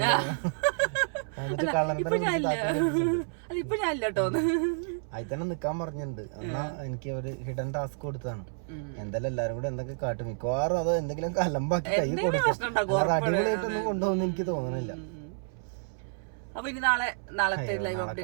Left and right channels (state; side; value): silent; left; 58 dB below the other